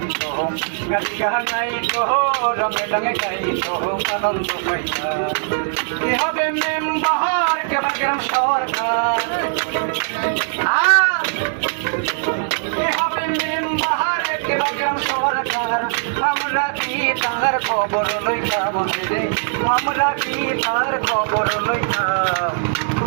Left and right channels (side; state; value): left; silent; 63 dB below the other